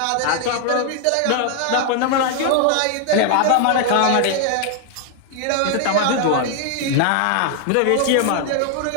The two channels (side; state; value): both; different; correlation 0.00